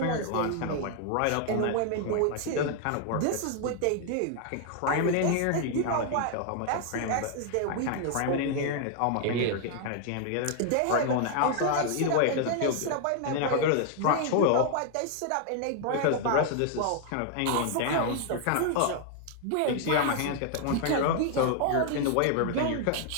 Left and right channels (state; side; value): different; both; correlation 0.00